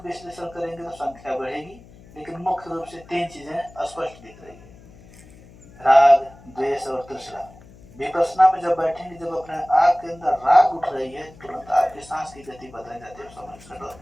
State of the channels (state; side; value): noise; left; hum, 22 dB below the sound